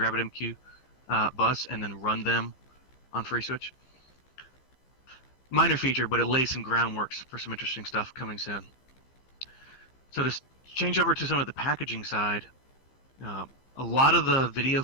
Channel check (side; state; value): right; late; 15 ms